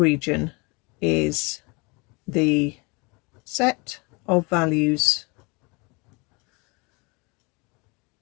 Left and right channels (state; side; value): quieter; right; 28.8 dB